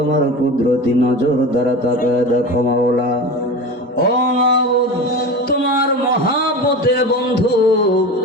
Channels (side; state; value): both; normal; correlation 0.29